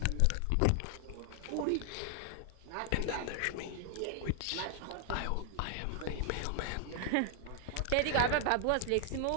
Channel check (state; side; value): different; both; correlation 0.00